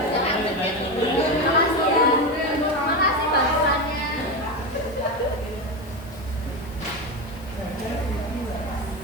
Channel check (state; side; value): noise; left; hiss, 26 dB below the sound